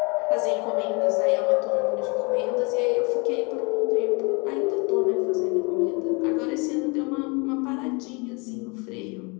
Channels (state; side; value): quieter; right; 30.0 dB